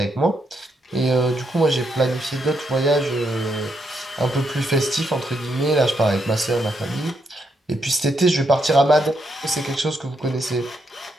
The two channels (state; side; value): normal; both; correlation 0.79